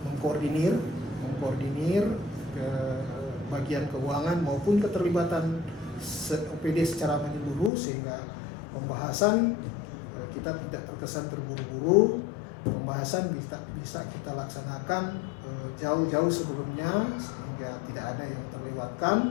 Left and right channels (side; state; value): right; drops out; at 7.7 s